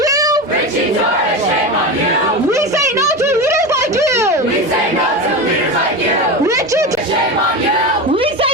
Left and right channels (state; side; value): normal; both; correlation 0.23